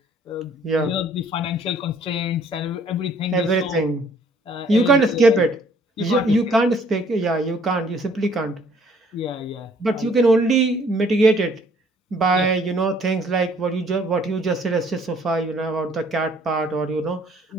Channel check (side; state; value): both; normal; correlation 0.60